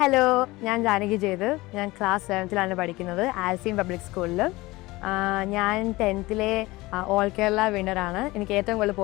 Hello, ഞാൻ ജാനകി ജയദേവ്. ഞാൻ class 7th പഠിക്കുന്നത് ആൽസീൻ പബ്ലിക് സ്കൂളിൽ. ഞാൻ 10th ഓൾ കേരള വിന്നറാണ്. എനിക്ക് ഏറ്റവും കൂടുതൽ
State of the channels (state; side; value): quieter; right; 20.6 dB